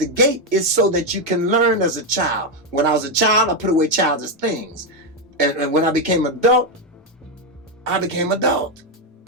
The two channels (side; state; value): both; normal; correlation 0.05